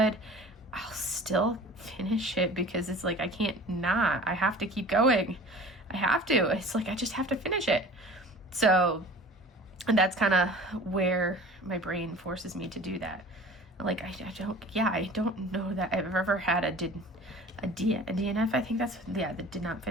I'll still finish it because it's like, I can't not. I have to keep going. I have to. It's like, I just have to finish it. So, and that's kind of where my brain forces me to do that. Like, I don't know that I've ever had a DNF, I think that's, yeah, that did not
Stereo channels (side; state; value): both; normal; correlation 0.42